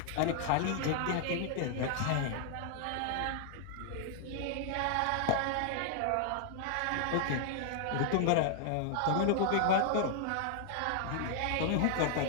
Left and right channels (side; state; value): both; different; correlation 0.00